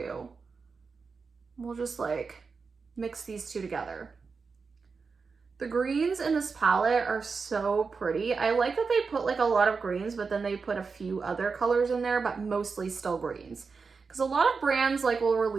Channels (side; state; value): left; quieter; 4.9 dB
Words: We'll just like mix these two together. The greens in this palette are so pretty. I like that they put like a lot of greens, but then they put a few other colors in there, but mostly still greens. Because a lot of brands like will